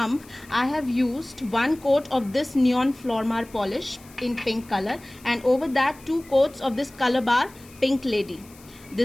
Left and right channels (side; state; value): left; noise; hiss, 24 dB below the sound